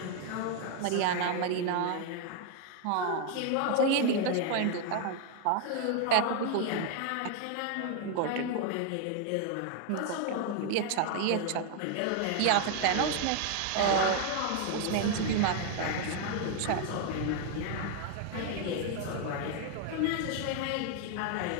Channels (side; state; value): both; different; correlation 0.00